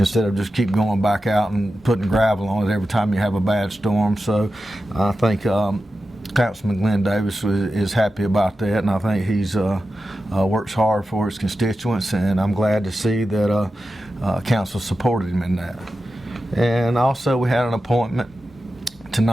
of just keep going back out and putting gravel on it every time you have a bad storm. So I think Councilman Glenn Davis is happy about that, and I think he's works hard for his constituents, and I'm glad to see that council supported him in that. And also we had an appointment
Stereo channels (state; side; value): normal; both; correlation 0.92